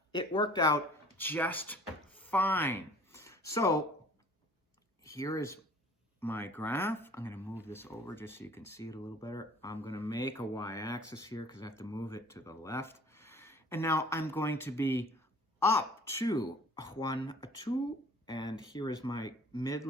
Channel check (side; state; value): both; normal; correlation 0.50